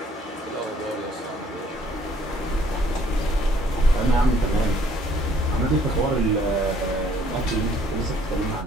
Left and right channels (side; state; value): both; normal; correlation 0.62